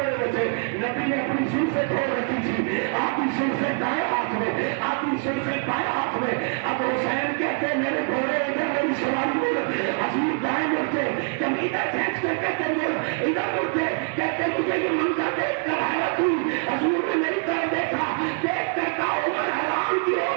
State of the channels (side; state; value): left; quieter; 37.1 dB